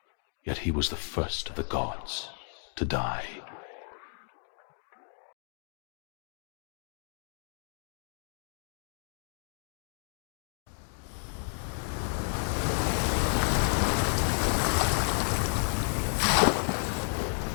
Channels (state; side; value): silent; right; 56 dB below the other